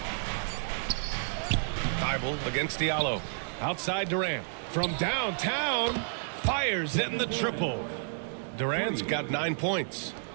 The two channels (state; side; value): silent; left; 57 dB below the other